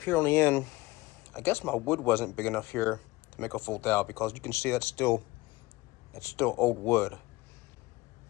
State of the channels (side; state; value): right; quieter; 20.6 dB